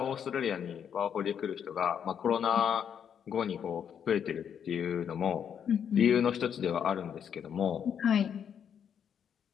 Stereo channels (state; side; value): quieter; right; 8.2 dB